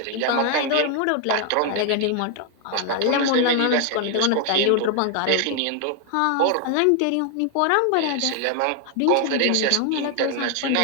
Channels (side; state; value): both; different; correlation 0.00